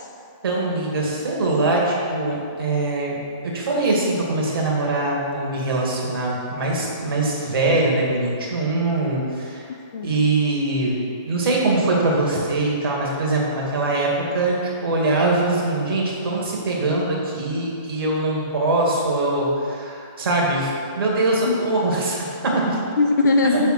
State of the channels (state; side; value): inverted; both; correlation -0.40